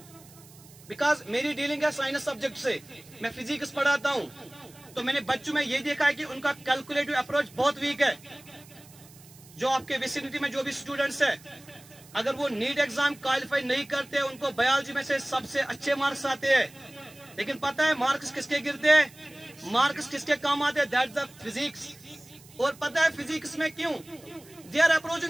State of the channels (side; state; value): right; noise; hiss, 23 dB below the sound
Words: बिकॉज मेरी डीलिंग है साइंस सब्जेक्ट से, मैं फिजिक्स पढ़ाता हूँ। तो मैंने बच्चों में ये देखा है कि उनका कैलकुलेटिव अप्रोच बहुत वीक है। जो आपके विसिनिटी में जो भी स्टूडेंट्स है, अगर वो नीट एग्जाम क्वालिफाई नहीं करते, उनको बायोलॉजी में से सबसे अच्छे मार्क्स आते हैं, लेकिन पता है मार्क्स किसके गिरते हैं, मार्क्स किसके काम आते हैं? That's the physics. और पता है फिजिक्स में क्यों? They are